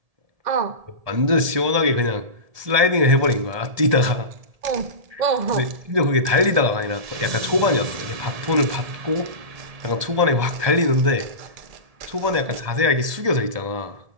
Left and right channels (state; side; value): late; left; 1.7 ms